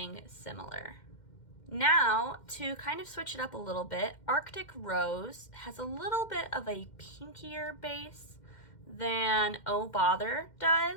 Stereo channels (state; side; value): late; right; 2.1 ms